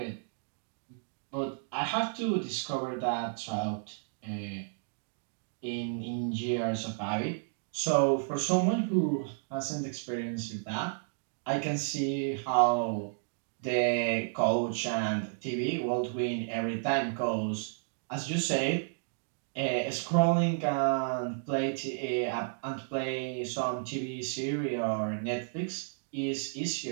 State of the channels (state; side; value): silent; left; digital silence